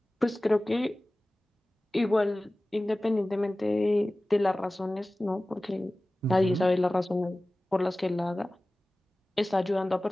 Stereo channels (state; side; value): normal; both; correlation 0.97